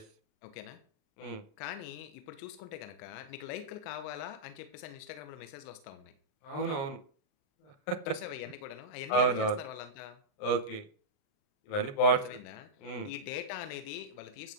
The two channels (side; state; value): right; late; 39 ms